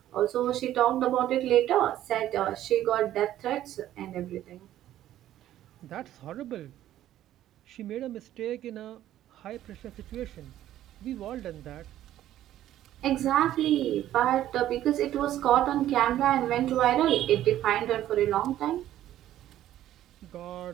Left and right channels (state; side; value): quieter; left; 12.7 dB